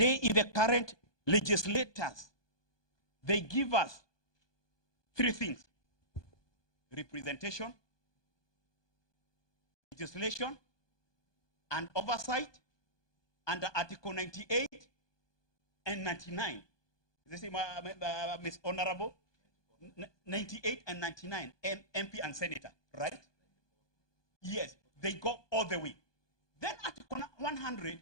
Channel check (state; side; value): late; right; 1.2 ms